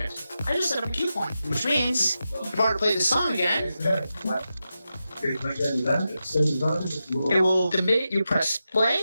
I just set up a cue point, which means if I were to play this song again, it will, the minute you press play,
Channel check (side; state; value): both; inverted; correlation -0.90